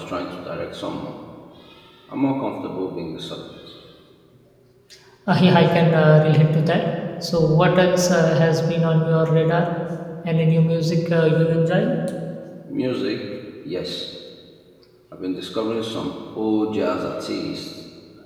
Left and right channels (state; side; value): identical; both; correlation 1.00